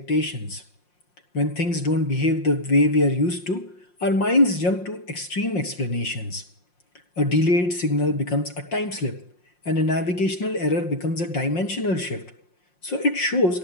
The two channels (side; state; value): right; late; 5.6 ms